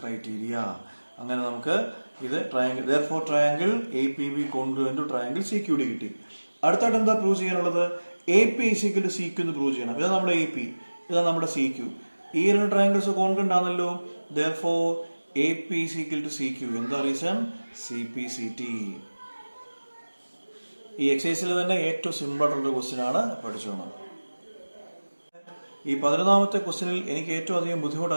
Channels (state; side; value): inverted; both; correlation -1.00